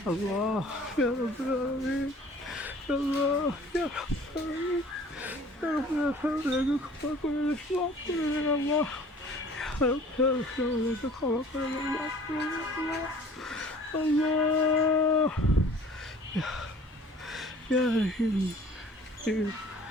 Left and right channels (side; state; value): both; normal; correlation 0.50